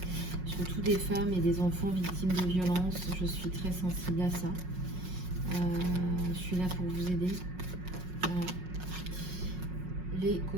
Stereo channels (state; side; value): late; left; 5.5 ms